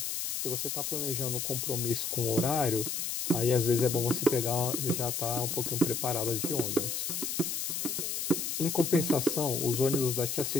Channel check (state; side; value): noise; left; hiss, 2 dB below the sound